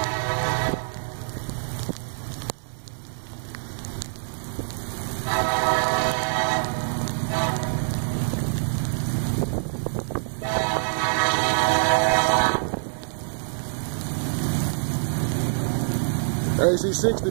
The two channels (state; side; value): silent; left; digital silence